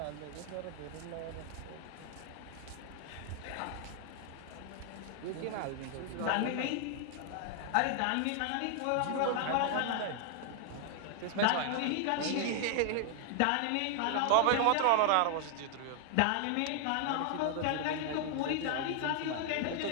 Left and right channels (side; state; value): both; different; correlation 0.00